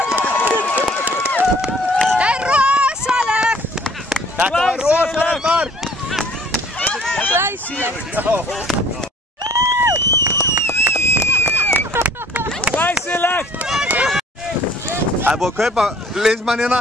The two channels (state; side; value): normal; both; correlation 0.55